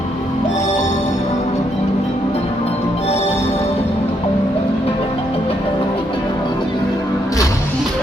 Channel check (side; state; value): both; normal; correlation 0.75